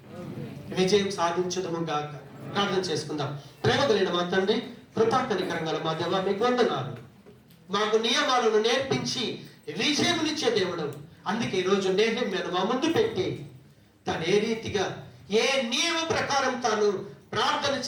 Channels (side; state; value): both; identical; correlation 1.00